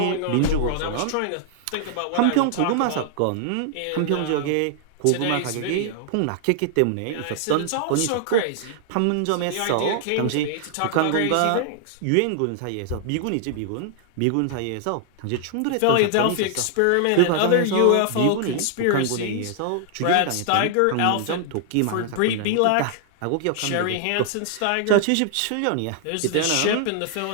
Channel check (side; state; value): both; different; correlation 0.00